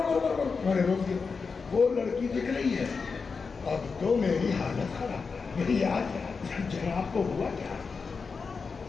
نے روک دیا. وہ لڑکی دکھ رہی ہے. اب تو میری حالت خراب. میری یاد جناب کو ہوا کیا؟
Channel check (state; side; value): quieter; right; 5.0 dB